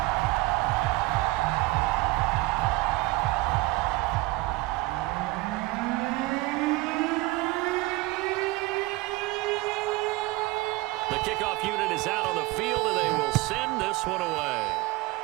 The kickoff unit is out on the field, and they will send this one away.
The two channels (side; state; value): left; quieter; 21.0 dB